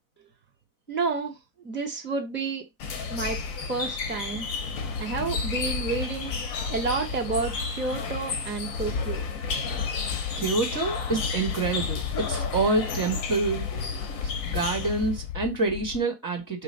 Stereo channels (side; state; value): right; late; 4.1 ms